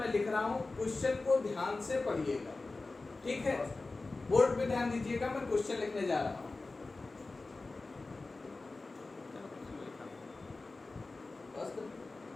लिख रहा हूँ, क्वेश्चन को ध्यान से पढ़िएगा, ठीक है? बोर्ड पे ध्यान दीजिएगा, मैं क्वेश्चन लिखने जा रहा हूँ।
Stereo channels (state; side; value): quieter; right; 3.5 dB